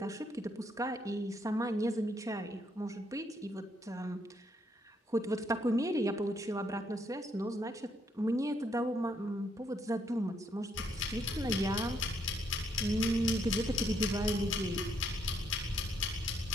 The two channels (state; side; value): normal; both; correlation 0.73